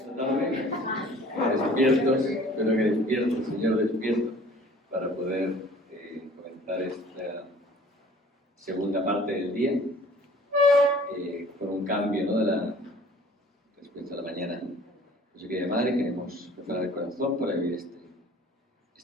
Despiertos, espero que despierto, Señor, despierto, para poder comenzar esta segunda parte del día con un cambio, ¿no?, respecto a la mañana. Pues yo, querida Madre, queremos preparar el corazón para vivir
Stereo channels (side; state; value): both; normal; correlation 0.50